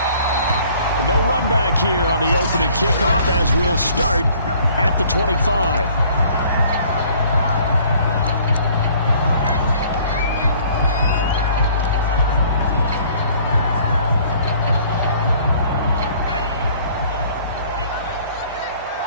No run back here on the opening kickoff as we'll start at the 25.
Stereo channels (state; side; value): inverted; both; correlation -0.56